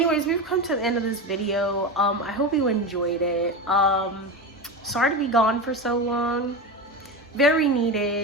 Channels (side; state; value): both; normal; correlation 0.21